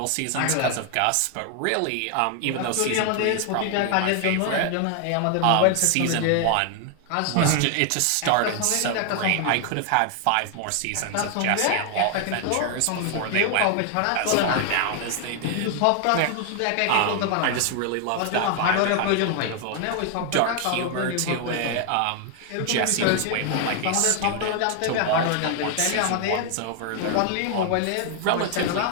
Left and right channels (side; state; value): both; different; correlation 0.00